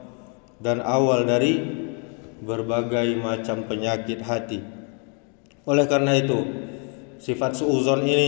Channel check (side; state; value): right; quieter; 38.7 dB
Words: dan awal dari berbagai macam penyakit hati. Oleh karena itu, sifat suuzon